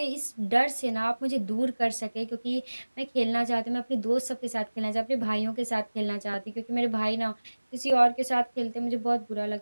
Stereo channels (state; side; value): inverted; both; correlation -1.00